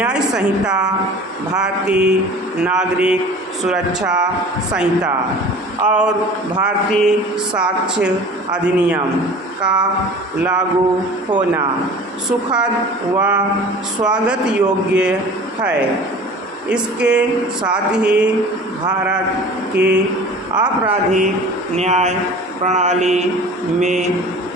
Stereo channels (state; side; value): normal; both; correlation 0.42